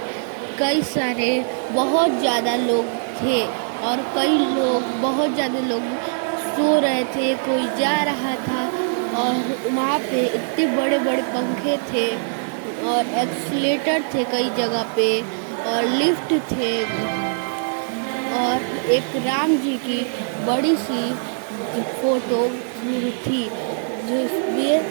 कई सारे बहुत ज़्यादा लोग थे और बहुत ज़्यादा लोग सो रहे थे, कोई जा रहा था। और वहाँ पे इतने बड़े बड़े पंखे थे और एक्सीलेटर थे कई जगह पे और लिफ्ट थे। और एक राम जी की बड़ी सी फोटो थी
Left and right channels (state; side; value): silent; left; digital silence